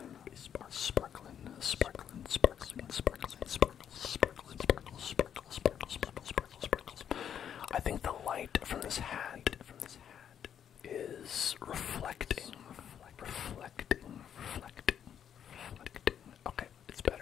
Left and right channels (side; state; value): right; quieter; 8.9 dB